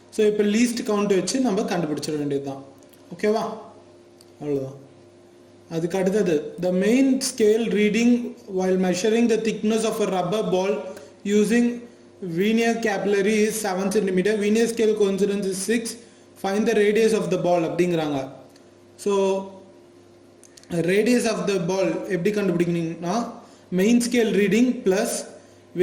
ஸோ இப்போ லீஸ்ட் கவுண்ட் வச்சு நம்ம கண்டுபிடிச்சிட வேண்டியது தான். ஓகேவா? அவ்வளோதான். அதுக்கு அடுத்தது the main scale reading while measuring the thickness of a rubber ball using vernier capillary is 7 cm. Vernier scale coincidence is 6. Find the radius of the ball அப்படிங்கிறாங்க. So radius of the ball எப்படி கண்டுபிடிக்கணும்னா main scale reading plus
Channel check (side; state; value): both; identical; correlation 1.00